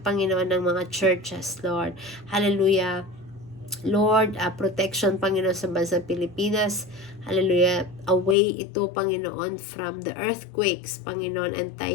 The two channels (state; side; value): drops out; right; at 8.3 s